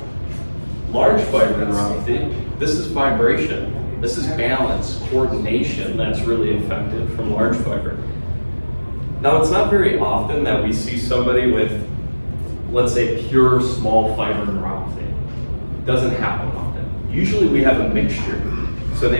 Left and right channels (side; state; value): both; inverted; correlation -1.00